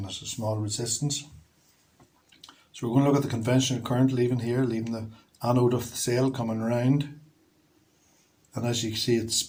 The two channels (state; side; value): identical; both; correlation 1.00